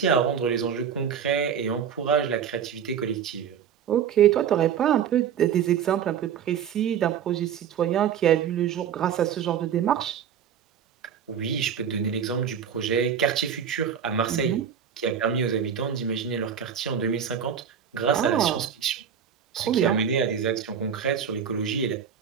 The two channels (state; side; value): quieter; left; 8.0 dB